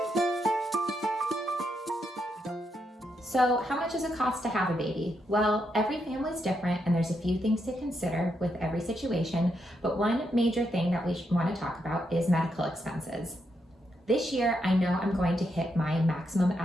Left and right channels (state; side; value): normal; both; correlation 0.81